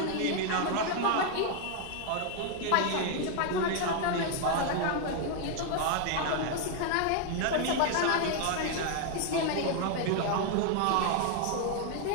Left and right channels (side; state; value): both; different; correlation 0.01